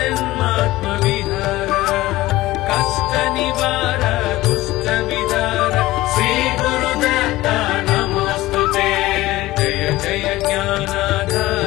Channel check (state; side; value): quieter; right; 17.7 dB